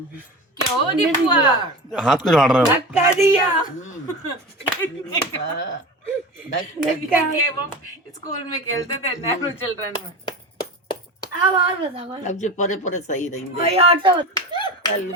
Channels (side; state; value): both; normal; correlation 0.29